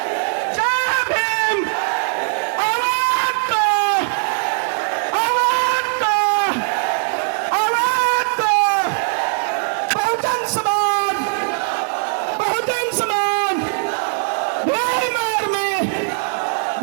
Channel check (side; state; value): left; silent; 66 dB below the other